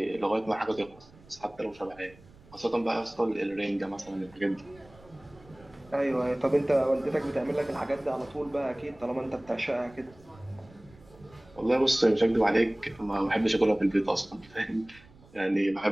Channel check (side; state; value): right; noise; rumble, 25 dB below the sound